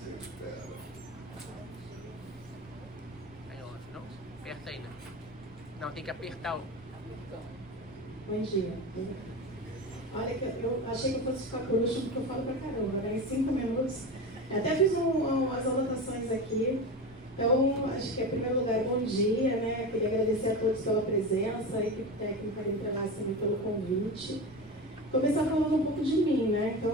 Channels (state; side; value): noise; right; rumble, 23 dB below the sound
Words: espera? Aí, ó, não? Aperta ainda. Não, tem que apertar o... Bom dia. Olha, eu achei que eu fosse ficar por último, porque eu falo pra caramba, né? Em 5 minutos. Até fiz umas anotações aqui. Então, acho que, em primeiro lugar, bom dia, né? Queria agradecer a todos pela presença, a equipe técnica da Interlace também pelo convite. Começar falando um pouco de mim, né? Então,